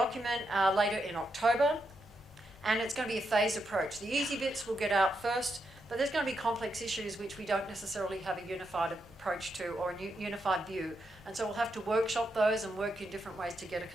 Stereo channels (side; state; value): both; normal; correlation 0.82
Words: later in October, and it's going to be a phased approach. The easy bits will get out first, but there's going to be complex issues which we don't necessarily have a unified approach to or a unified view. And so we'll have to workshop those and work in different ways to get a